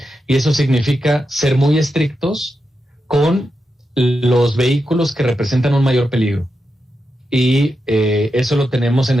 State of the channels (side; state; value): both; normal; correlation 0.87